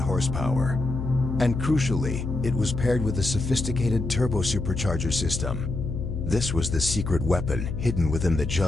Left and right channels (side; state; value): left; noise; hum, 4 dB below the sound